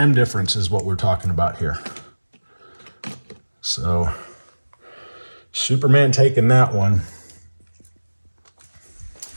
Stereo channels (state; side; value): inverted; both; correlation -1.00